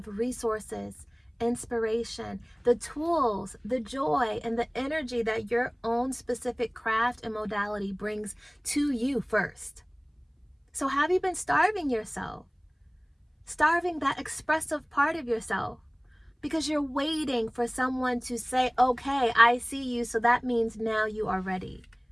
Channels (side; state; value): both; identical; correlation 1.00